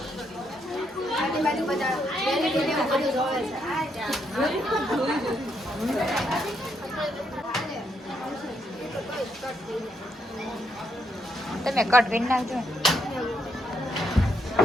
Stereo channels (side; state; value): both; normal; correlation 0.77